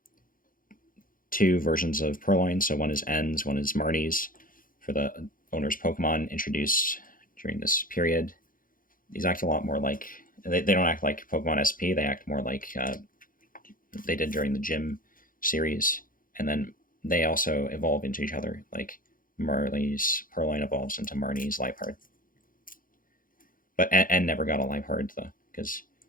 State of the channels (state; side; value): late; right; 0.40 ms